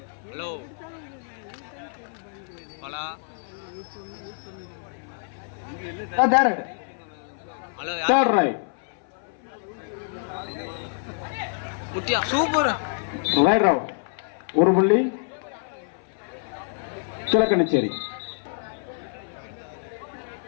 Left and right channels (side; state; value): right; silent; 58 dB below the other